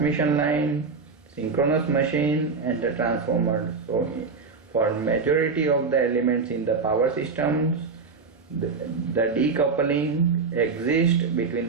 line, synchronous machine and the transformer. So for majority of the elements in the power systems, the decoupling exists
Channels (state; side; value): quieter; left; 4.8 dB